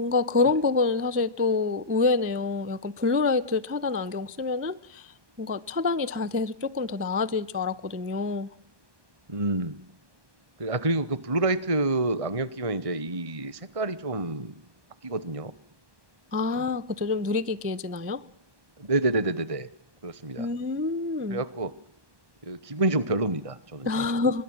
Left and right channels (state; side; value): late; left; 1.2 ms